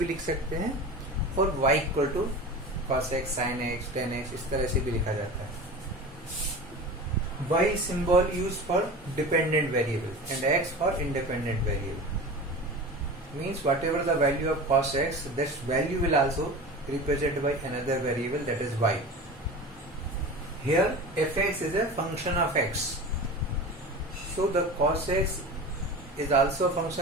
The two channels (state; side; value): normal; both; correlation 0.32